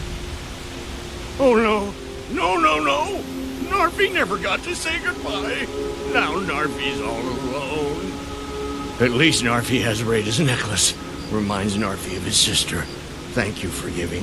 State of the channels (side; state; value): both; identical; correlation 1.00